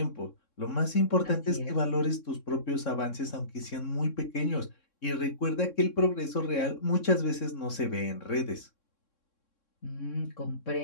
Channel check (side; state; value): right; late; 3.6 ms